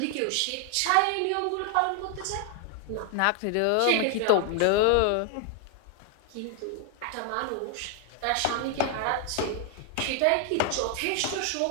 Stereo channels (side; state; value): both; different; correlation 0.00